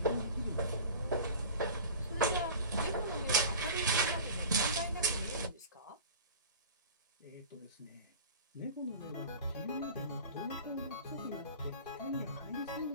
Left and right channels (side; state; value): both; inverted; correlation -0.38